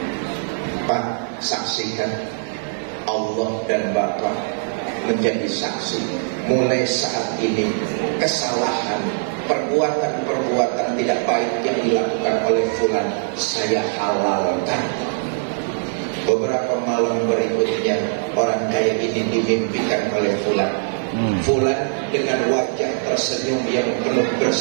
Pak, saksikan, Allah dan Bapak menjadi saksi. Mulai saat ini kesalahan, perbuatan-perbuatan tidak baik yang dilakukan oleh fulan saya halalkan. Beberapa malam berikutnya orang kaya ini dimimpikan oleh fulan. Fulan dengan wajah tersenyum yang penuh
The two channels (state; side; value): silent; left; digital silence